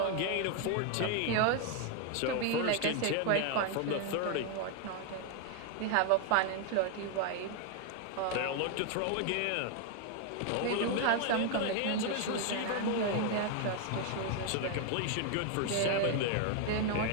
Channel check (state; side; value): different; both; correlation 0.01